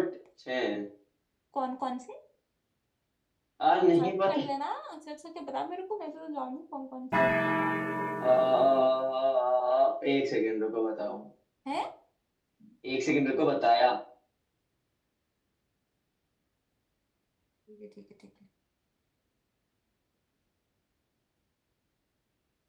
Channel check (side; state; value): both; identical; correlation 1.00